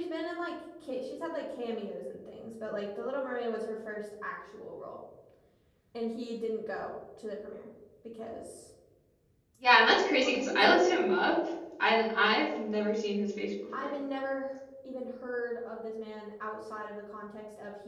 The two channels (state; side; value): identical; both; correlation 1.00